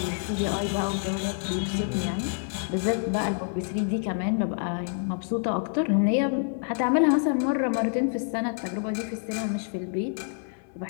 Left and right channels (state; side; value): silent; right; digital silence